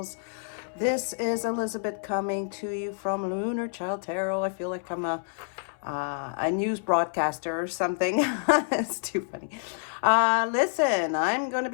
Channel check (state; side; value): silent; right; 59 dB below the other